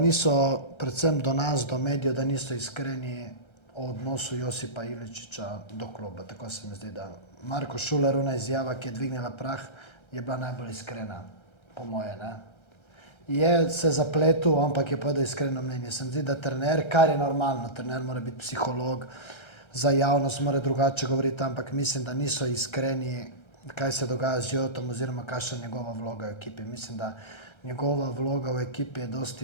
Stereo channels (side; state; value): right; late; 1.3 ms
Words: predvsem do nas, do medijev, da niso iskreni o odnosu Josipa Iličiča do kluba. Tako se mi zdi, da Marko Šuler, ona izjava, ki je dvignila prah, je bila najbolj iskrena, po moje, ne. Je se zapletel, ampak je povedal iskreno mnenje. Se mi zdi, da trener, kar je normalno, trener mora biti psiholog, za javnost mora drugače govoriti, ampak mislim, da niso iskreni, kaj se dogaja z Jotom oziroma kakšna je njegova vloga v ekipi. Mislim, da njegova vloga v ekipi je